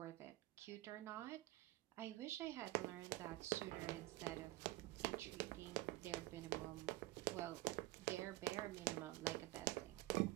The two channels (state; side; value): quieter; left; 18.8 dB